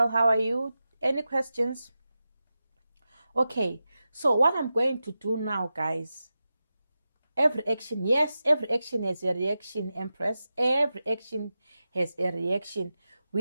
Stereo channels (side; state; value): both; inverted; correlation -0.92